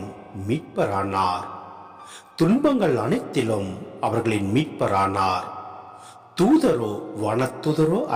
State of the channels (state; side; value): identical; both; correlation 1.00